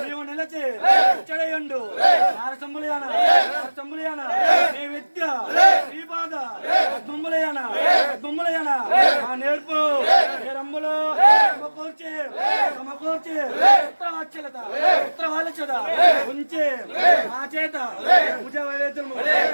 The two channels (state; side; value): inverted; both; correlation -1.00